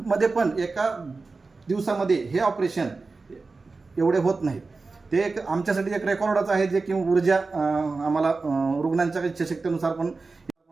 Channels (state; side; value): quieter; left; 3.9 dB